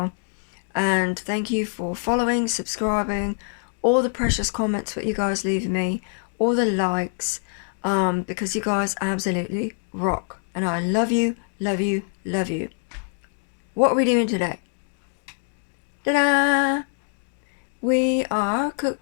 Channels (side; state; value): right; silent; 62 dB below the other